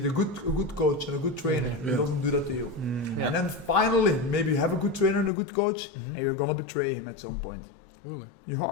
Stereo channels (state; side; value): drops out; right; at 5.3 s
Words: a good coach and a good trainer. He doesn't do that to you. And then finally, maybe you have a good trainer and a good coach, and you're gonna betray him at some point. Really? You